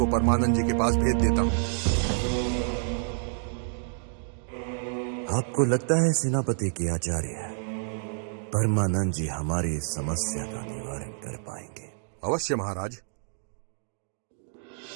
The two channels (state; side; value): silent; left; digital silence